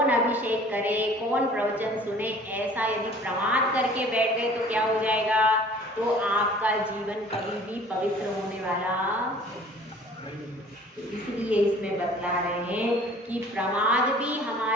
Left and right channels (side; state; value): both; normal; correlation 0.50